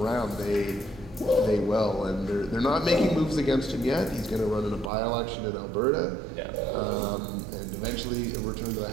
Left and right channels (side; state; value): left; drops out; at 4.9 s